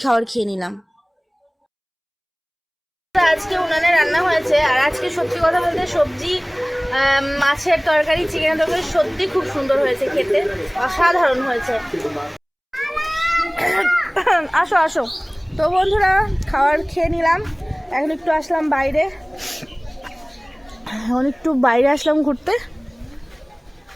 খাবার খেয়ে নিলাম। আজকে উনানে রান্না হয়েছে, আর আজকে সত্যি কথা বলতে সবজি, মাছের তরকারি, চিকেনের তরকারি সত্যি খুব সুন্দর হয়েছে, খেতে অসাধারণ হয়েছে। আসো আসো। তো বন্ধুরা খাবার খেয়ে নিলাম, এখন একটু আসলাম বাইরে, আসলাম ঘুরতে।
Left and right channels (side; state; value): both; identical; correlation 1.00